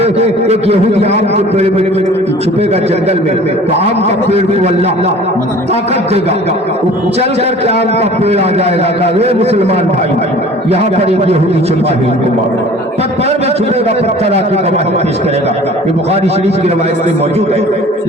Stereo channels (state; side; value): normal; both; correlation 0.46